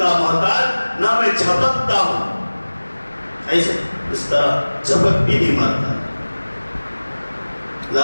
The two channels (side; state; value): both; inverted; correlation -1.00